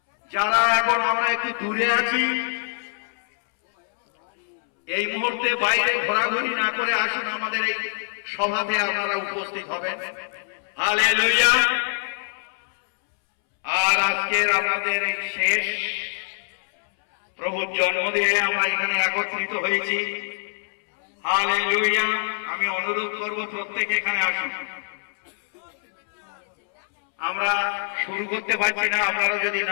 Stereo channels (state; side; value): silent; right; 63 dB below the other